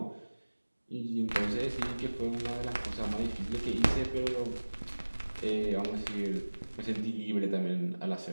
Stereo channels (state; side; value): inverted; both; correlation -1.00